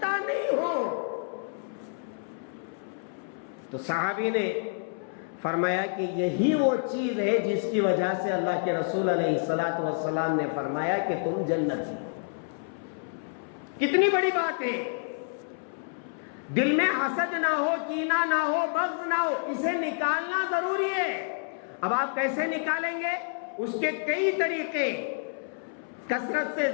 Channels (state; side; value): silent; right; 59 dB below the other